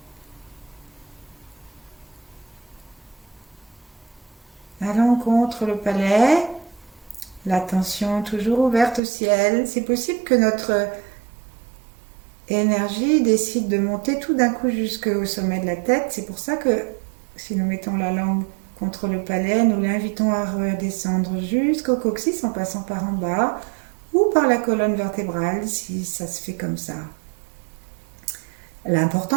Allons contre le palais, l'attention toujours ouverte au ciel. C'est possible que notre énergie décide de monter tout d'un coup jusqu'au sommet de la tête. C'est pour ça que si nous mettons la langue contre le palais, nous l'invitons à redescendre jusqu'au coccyx en passant par en bas ou par la colonne vertébrale si ça se fait comme ça.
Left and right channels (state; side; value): drops out; left; at 9.0 s